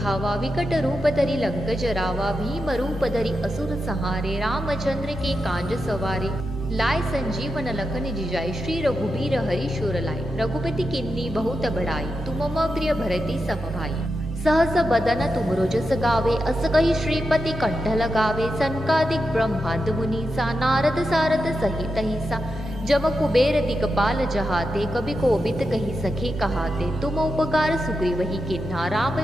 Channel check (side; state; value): both; normal; correlation 0.88